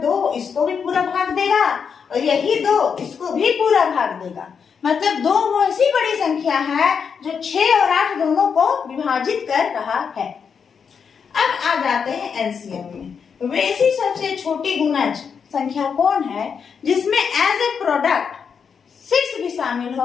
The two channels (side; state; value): right; quieter; 6.5 dB